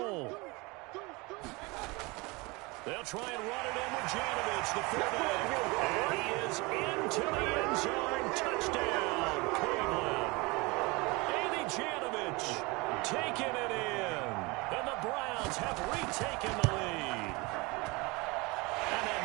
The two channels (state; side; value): quieter; left; 25.5 dB